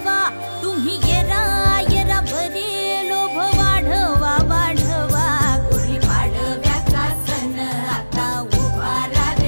तुम्ही येरा येरा बरे लोभ वाढवा वाढवा। गुढीपाडव्याचा सण आता उभारा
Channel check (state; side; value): inverted; both; correlation -1.00